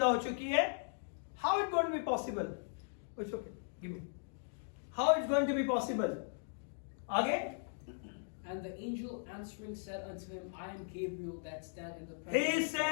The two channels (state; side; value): silent; right; digital silence